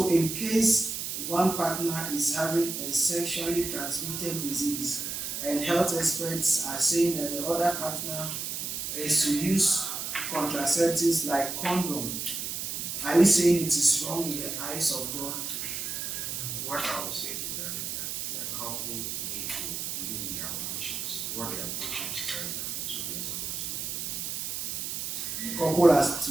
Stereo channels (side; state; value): right; noise; hiss, 4 dB below the sound